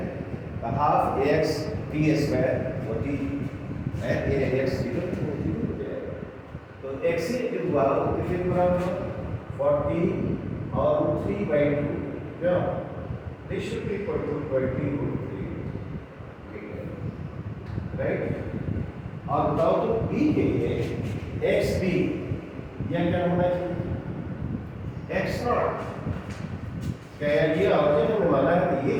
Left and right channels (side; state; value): both; identical; correlation 1.00